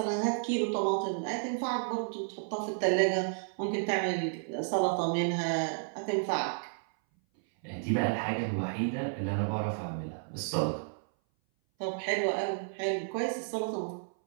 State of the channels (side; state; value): left; silent; 57 dB below the other